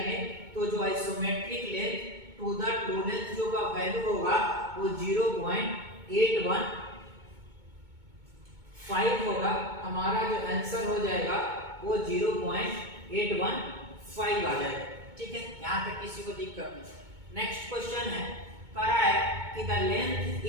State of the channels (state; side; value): late; left; 2.2 ms